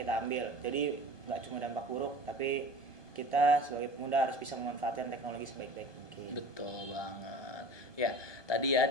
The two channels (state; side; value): late; right; 1.2 ms